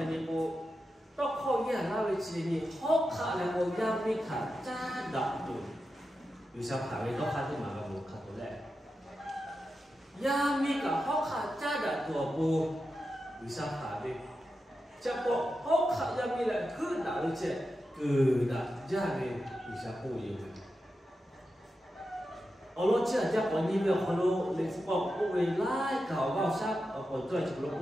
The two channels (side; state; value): both; normal; correlation 0.90